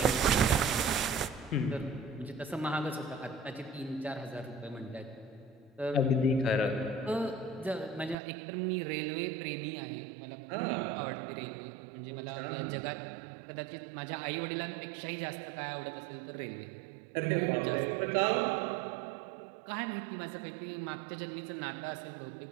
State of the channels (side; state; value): left; drops out; at 8.2 s